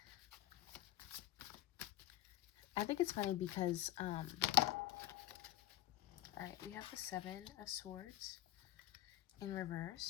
I think it's funny because, all right, we have the Seven of Swords in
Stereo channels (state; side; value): quieter; right; 14.6 dB